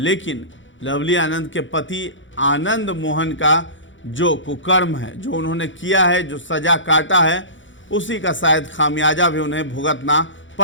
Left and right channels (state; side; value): late; right; 0.55 ms